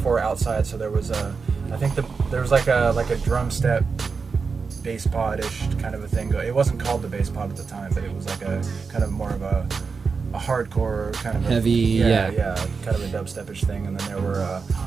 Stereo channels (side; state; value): left; quieter; 5.0 dB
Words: outside. So there was there was like a drum step, bass pod-ish kind of a thing. It wasn't called the bass pod at the time, but it was like a kind of more of a hardcore kind of heavy, yeah, kind of a dubstep-ish thing. And then